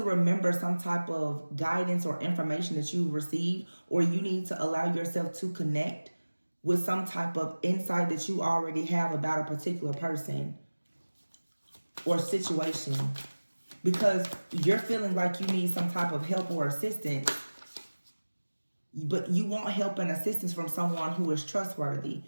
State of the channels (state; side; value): inverted; both; correlation -1.00